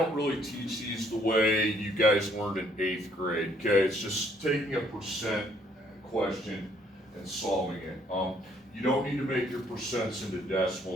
really teach these the way you guys learned in 8th grade. Okay, it's just taking a percent question and solving it. You don't need to make your percents into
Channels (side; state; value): both; normal; correlation 0.65